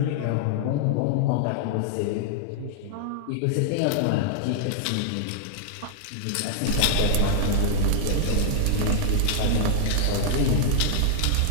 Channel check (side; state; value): both; different; correlation -0.01